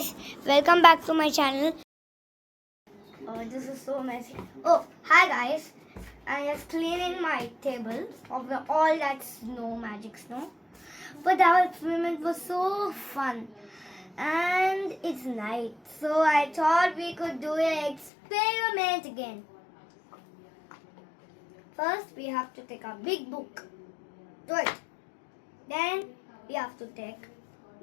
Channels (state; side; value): drops out; right; at 18.1 s